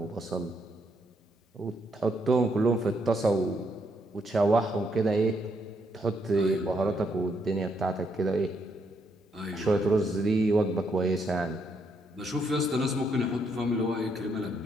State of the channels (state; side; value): normal; both; correlation 0.75